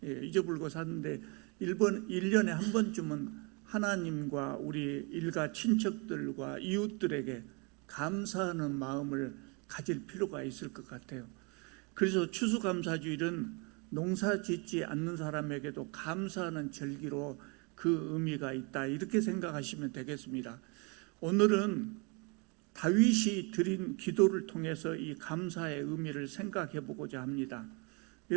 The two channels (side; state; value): left; quieter; 31.5 dB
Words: 잊어버리고 사는데 1년에 한 번쯤은 하나님과 우리 일가 친척들과 이웃들에게 감사하는 마음을 가질 필요가 있을 것 같아요. 그래서 추수감사주일은 농사 짓지 않는 사람에게도 감사하는 절기로 그 의미가 있다, 이렇게 생각하시면 되겠습니다. 오늘은 다윗이 드린 기도를 통해서 이 감사의 의미를 생각해 보고자 합니다.